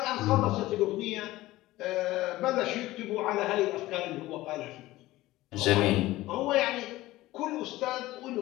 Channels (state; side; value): quieter; right; 17.3 dB